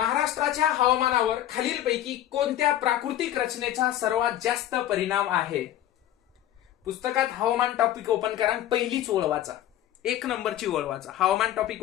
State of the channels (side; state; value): right; quieter; 12.5 dB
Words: हवामानावर खालीलपैकी कोणत्या प्राकृतिक रचनेचा सर्वात जास्त परिणाम आहे? पुस्तकात हवामान टॉपिक ओपन करा, पहिलीच ओळ वाचा, 1 नंबरची ओळ वाचा. हवामान टॉपिक